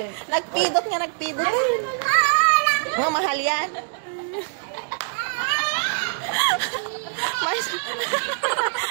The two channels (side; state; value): left; silent; digital silence